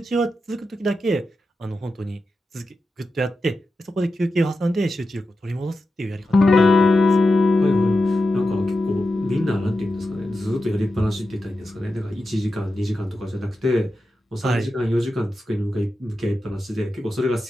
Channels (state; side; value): normal; both; correlation 0.91